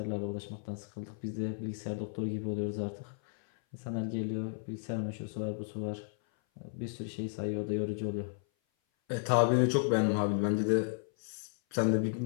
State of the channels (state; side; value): silent; right; 55 dB below the other